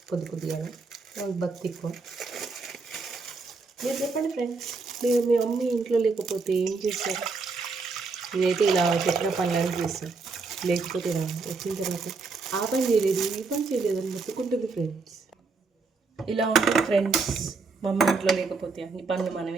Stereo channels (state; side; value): quieter; left; 4.2 dB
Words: కొద్దిగా వాళ్ళకి భక్తి ఎక్కువ. మీరు చెప్పండి ఫ్రెండ్స్, మీరు మీ మమ్మీ ఇంట్లో లేకపోతే ఏం చేస్తారు? ఇదైతే ఇలా చెప్పిన పనులను చేస్తాం, లేకపోతే ఇలా వచ్చిన తర్వాత ఆ పని చేయలేదు ఈ పని చేయలేదు అని మొత్తుకుంటుంది ఫ్రెండ్స్. ఇలా ఉంటుంది ఫ్రెండ్స్, మా అమ్మ ఇంట్లో లేకపోతే అన్ని పనులు